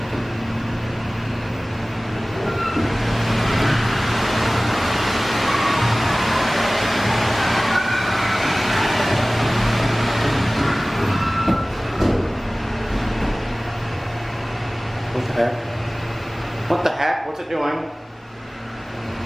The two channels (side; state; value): both; normal; correlation 0.98